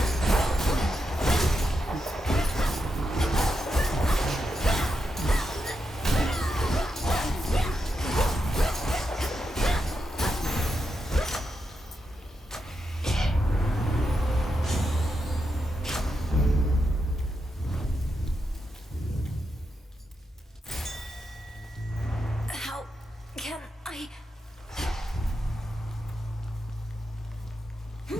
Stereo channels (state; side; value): normal; both; correlation 0.86